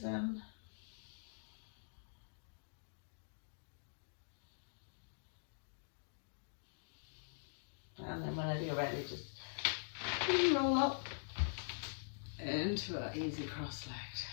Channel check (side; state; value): right; silent; digital silence